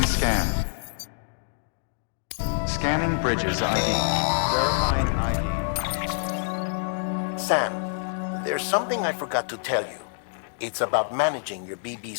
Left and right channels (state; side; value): silent; right; digital silence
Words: scan. Scanning bridges ID. Verifying ID. Sam, there's something I forgot to tell you. It's about managing your BB